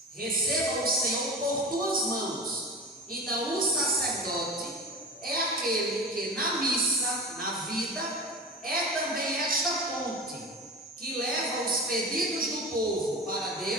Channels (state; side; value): normal; both; correlation 0.32